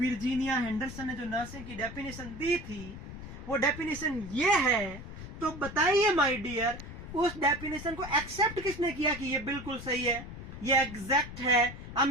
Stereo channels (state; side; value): noise; left; rumble, 11 dB below the sound